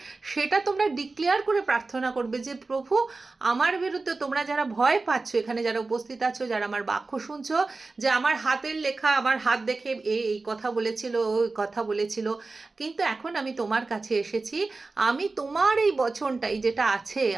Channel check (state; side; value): quieter; left; 3.7 dB